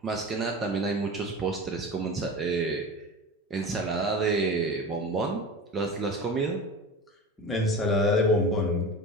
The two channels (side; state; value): both; normal; correlation 0.32